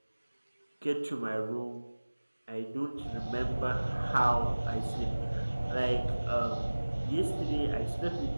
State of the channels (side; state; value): both; inverted; correlation -1.00